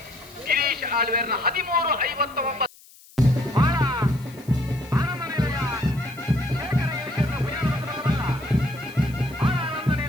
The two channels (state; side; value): noise; left; hiss, 24 dB below the sound